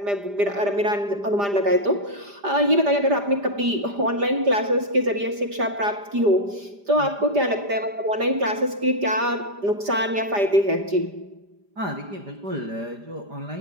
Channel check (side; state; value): left; late; 5.0 ms